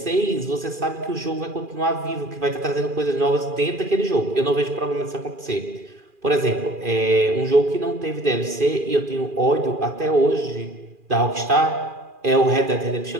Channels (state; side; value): late; left; 2.4 ms